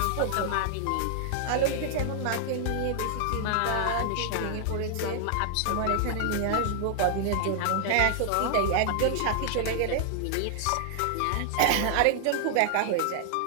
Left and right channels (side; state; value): both; different; correlation 0.00